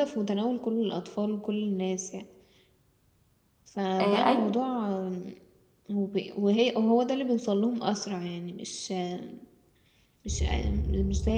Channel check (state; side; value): identical; both; correlation 1.00